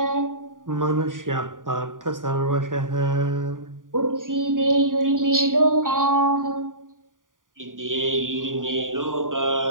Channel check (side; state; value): left; late; 0.89 ms